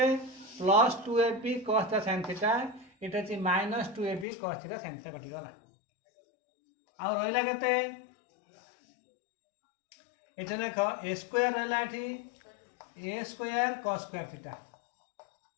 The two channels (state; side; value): drops out; right; at 4.2 s